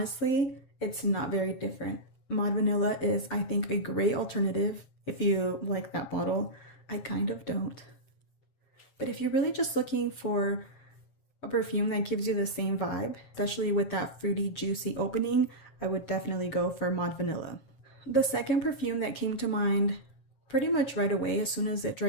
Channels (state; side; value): late; right; 7.4 ms